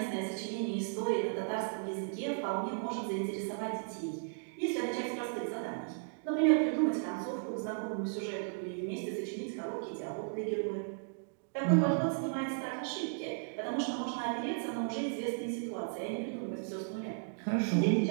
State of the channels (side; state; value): left; silent; digital silence